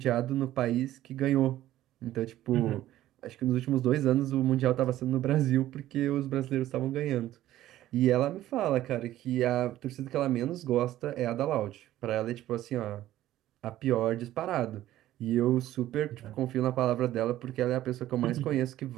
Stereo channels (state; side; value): quieter; left; 13.9 dB